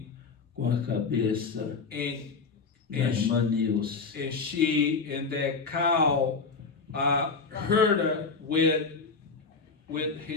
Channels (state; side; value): quieter; right; 4.7 dB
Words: com a cabeça and da irmã Nilce. and she and that cow hurt her with